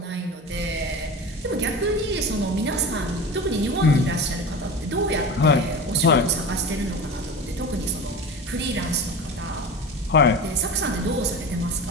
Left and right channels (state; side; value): normal; both; correlation 0.30